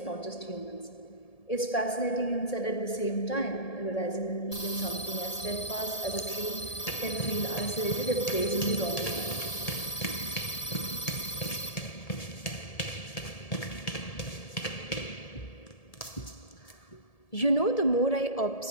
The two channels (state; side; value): late; right; 1.7 ms